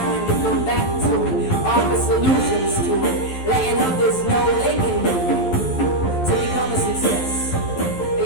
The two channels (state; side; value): late; right; 11 ms